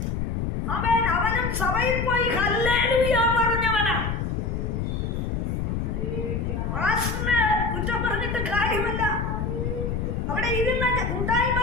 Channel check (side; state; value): left; noise; rumble, 1 dB below the sound